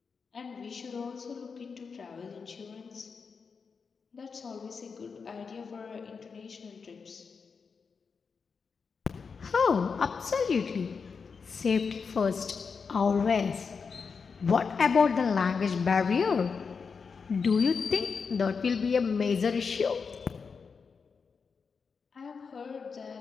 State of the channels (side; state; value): right; quieter; 5.4 dB